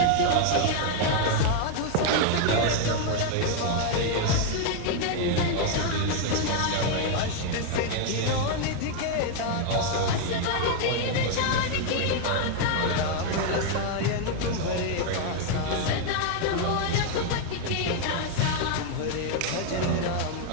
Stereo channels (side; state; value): both; different; correlation 0.00